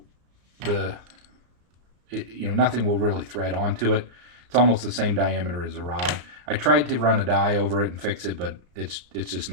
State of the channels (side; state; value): left; late; 33 ms